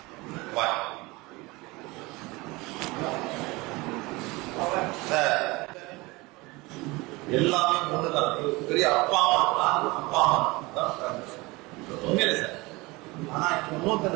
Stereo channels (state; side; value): quieter; left; 23.2 dB